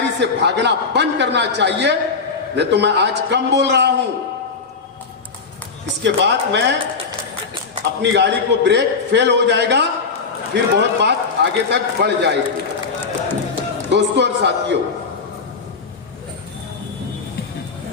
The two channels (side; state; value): right; quieter; 4.9 dB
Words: से भागना बंद करना चाहिए। नहीं तो मैं आज कम बोल रहा हूं, इसके बाद मैं अपनी गाड़ी को ब्रेक फेल हो जाएगा, फिर बहुत बात आगे तक बढ़ जाएगी। दोस्तों और साथियों,